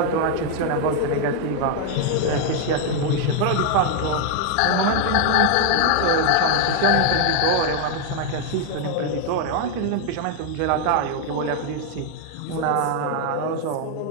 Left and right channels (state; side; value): different; both; correlation 0.01